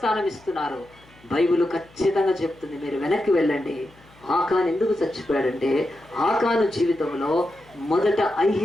ఇస్తున్నారు. బైబిల్ ఖచ్చితంగా చెప్తుంది. మీరు వెనక్కి వెళ్ళండి. ఆకాను ఎందుకు చచ్చిపోయాడంటే ఆకాను జీవితంలో మొదట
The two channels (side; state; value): left; noise; hum, 27 dB below the sound